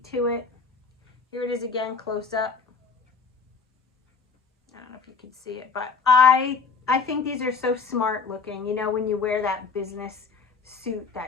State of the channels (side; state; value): right; quieter; 5.3 dB